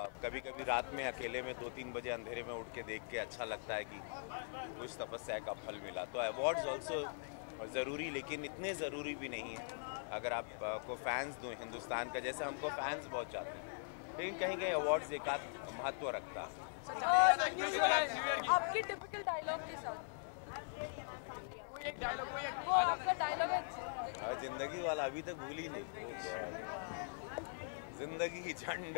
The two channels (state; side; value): silent; right; 50 dB below the other